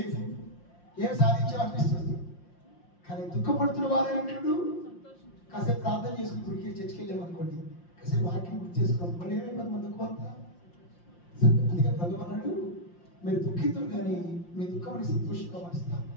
ఏం సాధించామనిపిస్తుంది. కానీ దుఃఖపడుతున్న వారైనటువంటి కాసేపు ప్రార్థన చేసుకుని గుడికి చర్చికి వెళ్ళామనుకోండి, కాసేపు వాక్యం గుర్తు చేసుకోవాలి, మళ్ళీ ఏమైపోతుంది మన దుఃఖం అంతా. అందుకే ప్రభు అన్నాడు, మీరు దుఃఖితులు కానీ మీ దుఃఖం సంతోషంగా మరుస్తారు.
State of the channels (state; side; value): late; right; 5.7 ms